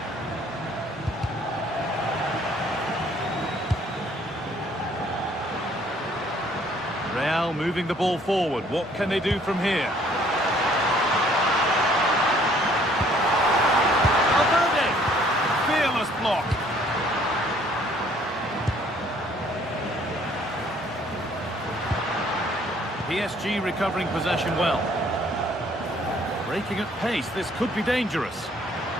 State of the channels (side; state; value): both; normal; correlation 0.60